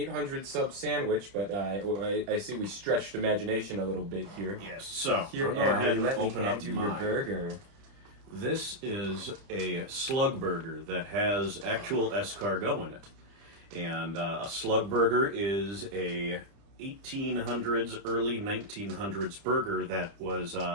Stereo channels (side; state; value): left; late; 30 ms